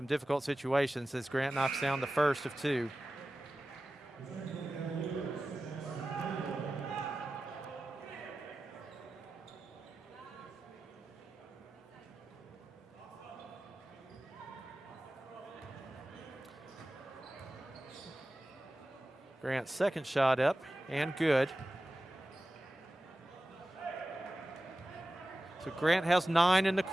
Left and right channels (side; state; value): both; normal; correlation 0.95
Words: difficult situations, as Grant knocks down the first of 2. Grant's second shot up and good. So Grant has 9 in the